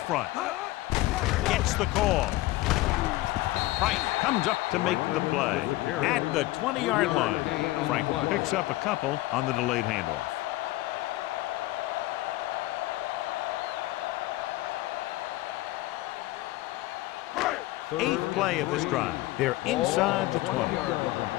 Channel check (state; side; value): quieter; right; 18.0 dB